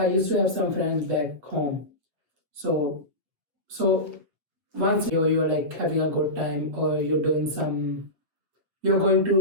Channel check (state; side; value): late; left; 8.2 ms